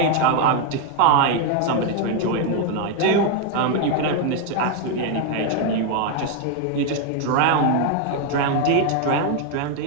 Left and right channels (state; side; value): different; both; correlation 0.01